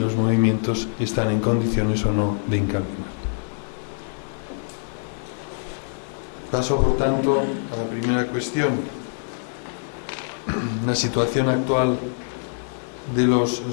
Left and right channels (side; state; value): right; silent; digital silence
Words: movimientos están en condiciones o no de incardinar. Paso, por tanto, a la primera cuestión, la situación actual de los